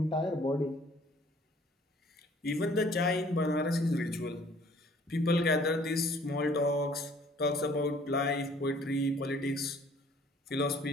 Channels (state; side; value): normal; both; correlation 0.57